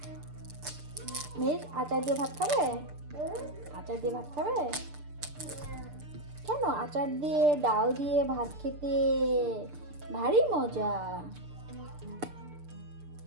মেয়ের আচার দিয়ে ভাত খাবে? আচার দিয়ে ভাত খাবে? কেন? আচার দিয়ে ডাল দিয়ে ভাত খেতে ভারী মজা।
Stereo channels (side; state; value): left; late; 6.7 ms